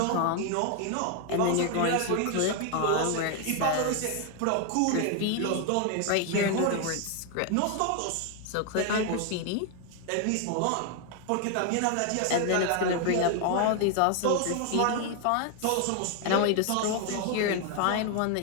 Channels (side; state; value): both; different; correlation 0.00